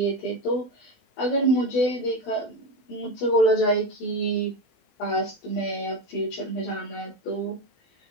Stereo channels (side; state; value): right; late; 20 ms